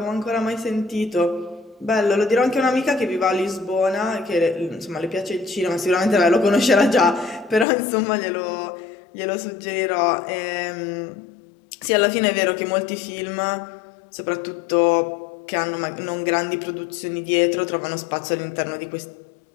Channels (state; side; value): drops out; right; at 7.7 s